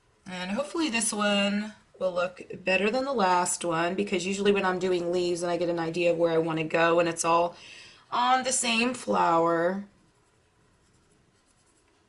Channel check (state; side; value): identical; both; correlation 1.00